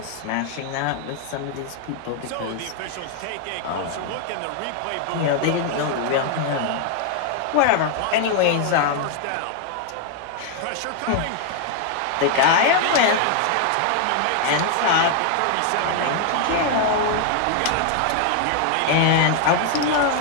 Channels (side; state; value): both; different; correlation 0.00